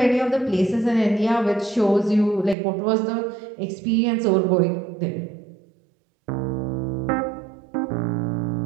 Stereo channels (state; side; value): drops out; left; at 2.6 s